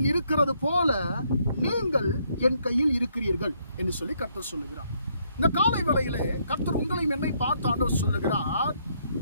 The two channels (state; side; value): inverted; both; correlation -0.71